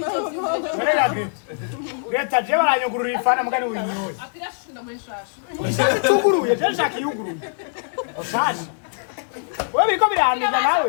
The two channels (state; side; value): silent; right; digital silence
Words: Nenga Greta. Greta je baranyugurura ifana mugani uri nyoye. akirashunda muri shasha Tuguruye je nshaka yuguruye. Osaje. Wewe biko biranduza nawe.